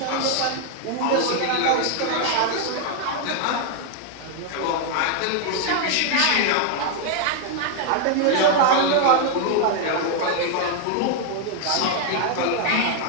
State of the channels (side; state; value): both; different; correlation 0.00